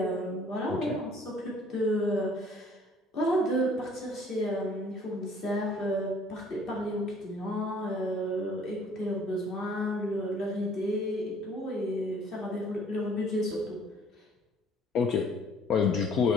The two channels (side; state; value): both; normal; correlation 0.57